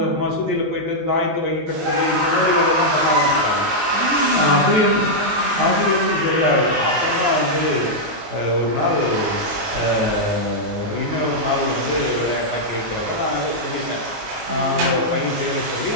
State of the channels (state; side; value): late; left; 19 ms